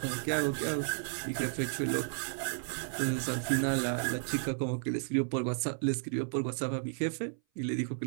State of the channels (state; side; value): silent; left; 56 dB below the other